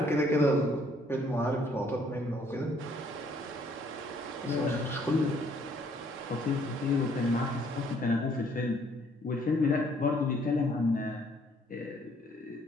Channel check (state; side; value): normal; both; correlation 0.64